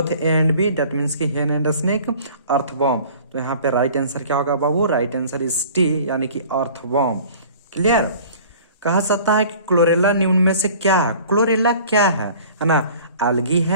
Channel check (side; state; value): both; inverted; correlation -0.47